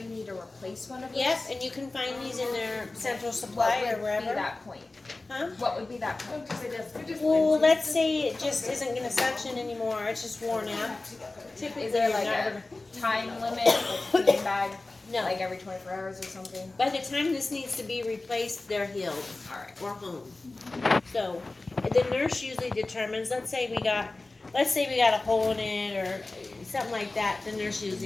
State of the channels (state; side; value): quieter; right; 3.2 dB